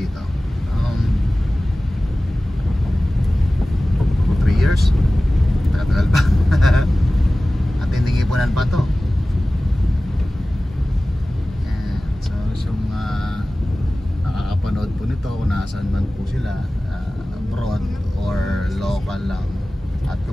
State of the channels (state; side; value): normal; both; correlation 0.97